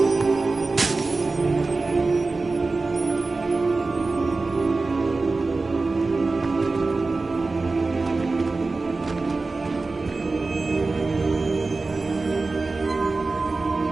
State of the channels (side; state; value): left; quieter; 3.6 dB